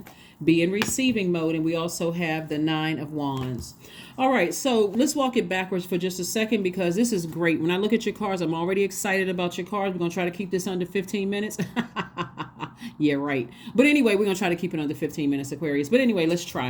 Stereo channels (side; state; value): both; identical; correlation 1.00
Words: Be in receiving mode. And we also have the 9 of Wands. All right, so let's walk it backwards for just a second because this is great. When I look at your cards, I'm already excited about your cards. We're going to try to keep this under 15 minutes. Yeah, right. But anyway, we're going to try to keep it under 15 minutes, Aquarius. But anyway, let's